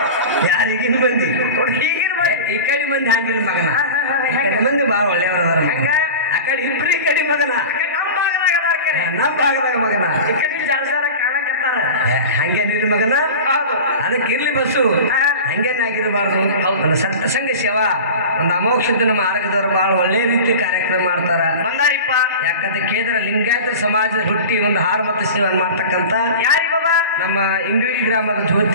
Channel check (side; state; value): both; inverted; correlation -0.33